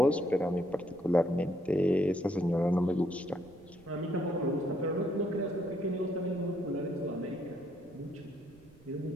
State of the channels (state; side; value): noise; right; rumble, 25 dB below the sound